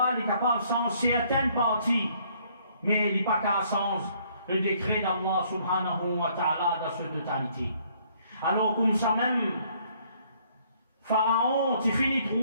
il est capable de changer certaines parties, mais il n'est pas qu'à changer le décret d'Allah subhanahu wa ta'ala dans sa totalité. Alors, comme ça même, Pharaon, tu finis de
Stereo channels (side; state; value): both; inverted; correlation -0.64